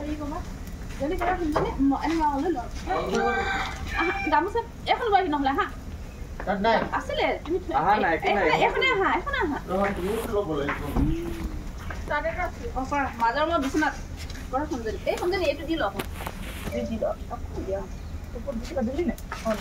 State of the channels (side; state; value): both; identical; correlation 1.00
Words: ক'বা যদি কৰা গামোচা এখন লৈ আহি নহ'লে হা আছিলে তুমি এখনে আহা মাজৰ মই বিচনাত কৰা সঞ্জনী এই সঞ্জনী এইটো দি লওক